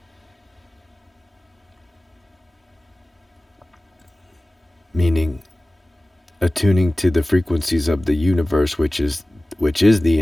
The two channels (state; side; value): normal; both; correlation 0.97